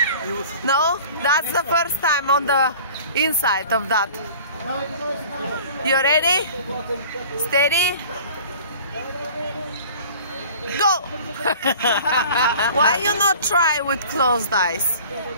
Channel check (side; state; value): both; inverted; correlation -0.45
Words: No? That's the first time on the inside of that. You ready? Steady? Go! Why you not try with closed eyes?